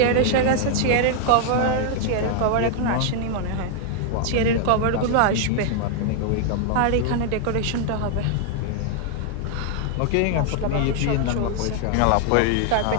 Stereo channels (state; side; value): different; both; correlation 0.00